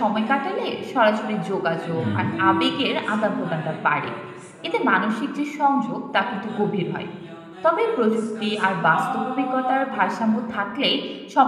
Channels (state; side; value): identical; both; correlation 1.00